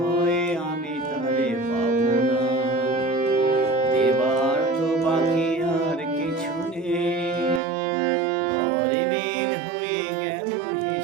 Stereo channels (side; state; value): left; drops out; at 7.6 s